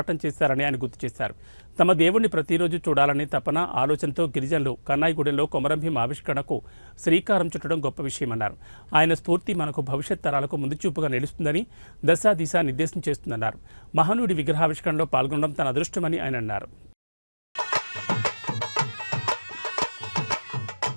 చేశారని ఆయన గుర్తు చేశారు. తమ దేవుణ్ణి ప్రతిరోజు చూడాలనే తపన ఆలోచనతో గిరిజనులు కన్నాయిగూడెంలో కొమరంభీం ఆవిష్కరణకు శ్రీకారం చుట్టడం గొప్ప విషయమన్నారు. ఆయన స్ఫూర్తి మనకు భవిష్యత్ తరాలకు ముందుచూపుగా నిలుస్తుందని దశ దిశ నిర్దేశం చేస్తుందన్నారు. మహనీయుడి విగ్రహావిష్కరణలో పాల్గొనడం తన అదృష్టమని ఆయన అన్నారు.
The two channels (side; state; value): both; inverted; correlation -1.00